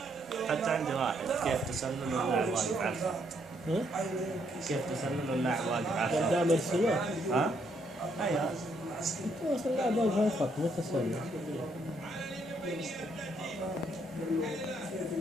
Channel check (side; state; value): both; normal; correlation 0.72